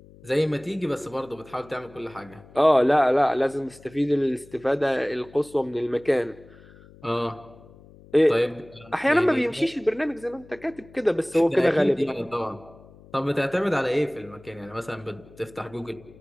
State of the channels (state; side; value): noise; left; hum, 23 dB below the sound